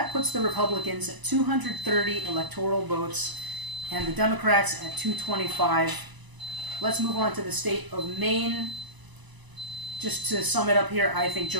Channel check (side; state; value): left; late; 1.0 ms